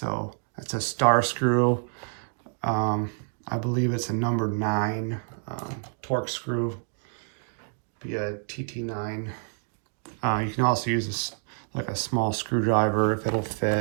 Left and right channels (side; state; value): left; silent; 60 dB below the other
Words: that's a star screw. I believe it's a number 9 torque screw, be a TT9. You can also use like a small screwdriver if it'll